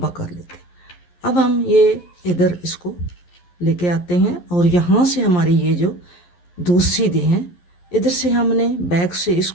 कर लेते हैं। अब हम ये इधर इसको लेके आते हैं और यहाँ से हमारी ये जो 2 सीधे हैं, इधर से हमने बैक से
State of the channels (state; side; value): late; right; 11 ms